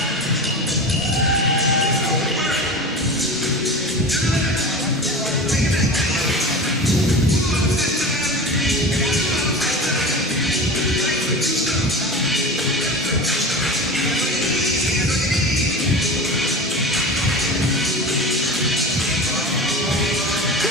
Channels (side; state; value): both; normal; correlation 0.31